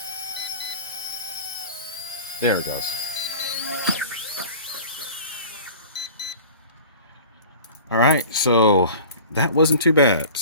There it goes. All right, so that wasn't too bad.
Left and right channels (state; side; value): inverted; both; correlation -0.41